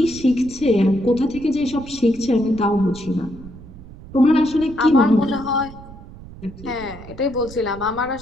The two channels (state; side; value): noise; right; rumble, 16 dB below the sound